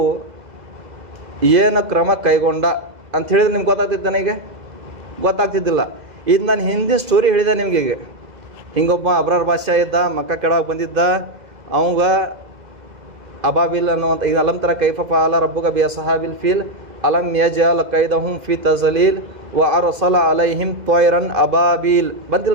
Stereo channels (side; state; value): left; late; 2.0 ms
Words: ಏನು ಕ್ರಮ ಕೈಗೊಂಡ ಅಂತ ಹೇಳಿದ್ರೆ ನಿಮ್ಗೆ ಗೊತ್ತಾಗ್ತಿತ್ತು. ನನಗೆ ಗೊತ್ತಾಗ್ತಿದ್ದಿಲ್ಲ. ಇದು ನಾನು ಹಿಂದಿನ ಸ್ಟೋರಿ ಹೇಳಿದೆ ನಿಮಗೆ. ಈಗ ಹಿಂಗೊಬ್ಬ ಅಬ್ರಾರ್ ಬಾದ್ಶಾ ಇದ್ದ, ಮಕ್ಕ ಕೆಳಗೆ ಬಂದಿದ್ದ. ಅವಂಗ ಅಬಾಬಿಲ್ ಅನ್ನುವಂಥ ಈಗ ಅಲಂತರ ಕೈಫ ಫಾಲ ರಬ್ಬುಕ ಬಿ ಸಹಾಬಿಲ್ ಫೀಲ್ ಅಲಂ ಯಜಅಲ್ ಕೈದಹುಂ ಫಿ ತಜಲೀಲ್ ವ ಅರ್ಸಲ ಅಲೈಹಿಂ ತ್ವಯ್ರನ್ ಅಬಾಬಿಲ್